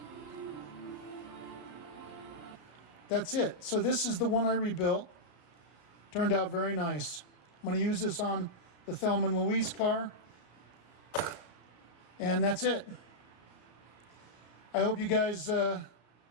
That's it. So this is the one I rebuilt. Turned out very nice. I'm going to use this on the Thelma and Louise car. And that's it. I hope you guys, I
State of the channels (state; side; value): late; right; 33 ms